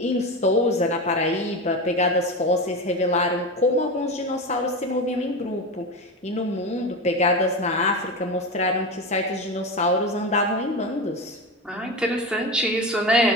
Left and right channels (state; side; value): normal; both; correlation 0.21